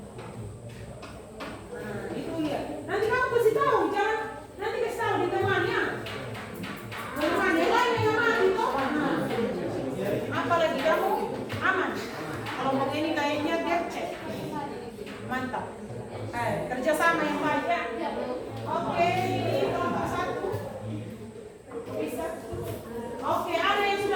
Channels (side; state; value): both; identical; correlation 1.00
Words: Nah, itu ya. Nanti kamu kasih tahu, jangan nanti kasih tahu di temannya. Teman yang lain yang mati toh. Nah, apalagi kamu aman. Kalau mau ini kayaknya dia cek. Mantap. Kerjasama yang baik ya. Oke, kelompok 1 bisa. Oke, ada yang